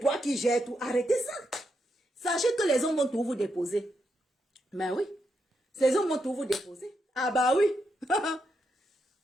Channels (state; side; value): normal; both; correlation 0.83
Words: qui gères tout. Arrêtez ça. Sachez que les hommes vont tout vous déposer. Mais oui. Les hommes vont tout vous déposer. Ah bah oui.